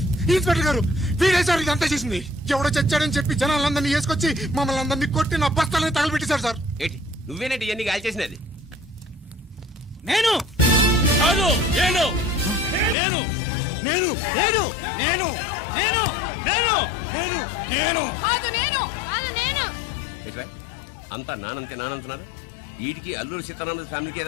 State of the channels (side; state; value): right; drops out; at 13.0 s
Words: ఇన్స్పెక్టర్ గారు, వీడే సార్ ఇదంతా చేసింది. ఎవడో చచ్చాడని చెప్పి జనాలందరినీ వేసుకొచ్చి మమ్మల్ని అందరినీ కొట్టి నా బస్తాలని తగలబెట్టేశారు సార్. ఏంటి నువ్వేనండి ఇవన్నీ గాలి చేసినది? నేను కాదు నేను నేను నేను నేను నేను నేను నేను నేను కాదు నేను కాదు నేను అంతా నానంతే నానంటున్నారు. వీటికి అల్లూరు సీతారామరాజు ఫ్యామిలీకి